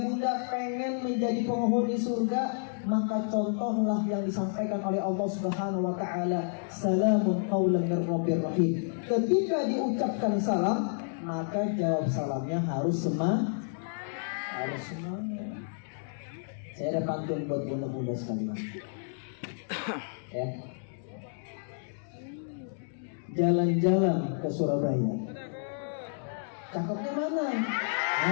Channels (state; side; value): silent; right; digital silence